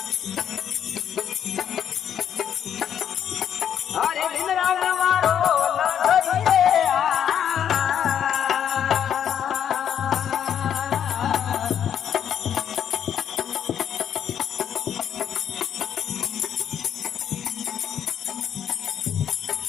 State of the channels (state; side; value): quieter; right; 9.1 dB